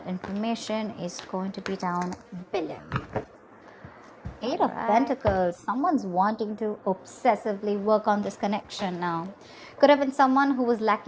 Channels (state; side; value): identical; both; correlation 1.00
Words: information is going to be down below. Eight of Pentacles. Someone's wanting to obsessively work on this connection now. Could have been someone who was